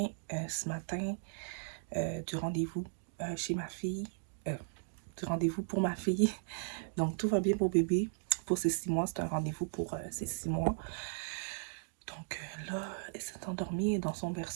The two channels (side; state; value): left; silent; digital silence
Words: ce matin du rendez-vous chez ma fille, du rendez-vous pour ma fille. Donc tout va bien pour bébé. Pour ses 6 mois, c'est un rendez-vous pour ses 6 mois. Donc là, elle s'est endormie dans son